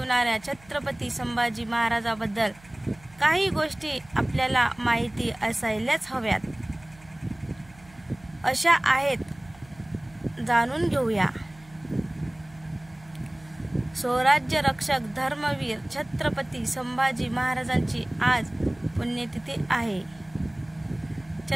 छत्रपती संभाजी महाराजांबद्दल काही गोष्टी आपल्याला माहिती असायलाच हव्यात। अशा आहेत, जाणून घेऊया। स्वराज्य रक्षक धर्मवीर छत्रपती संभाजी महाराजांची आज पुण्यतिथी आहे।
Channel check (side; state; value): right; noise; hum, 24 dB below the sound